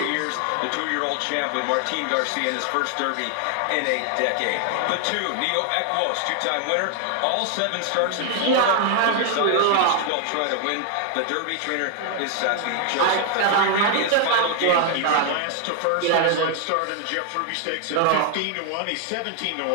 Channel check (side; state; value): both; different; correlation 0.00